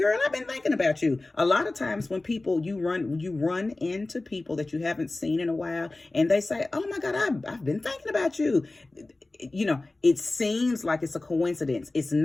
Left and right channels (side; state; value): right; quieter; 3.0 dB